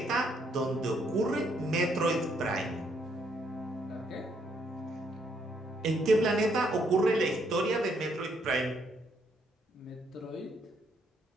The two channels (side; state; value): both; normal; correlation 0.71